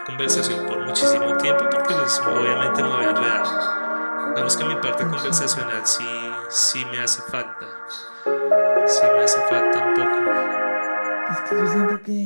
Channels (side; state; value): both; inverted; correlation -1.00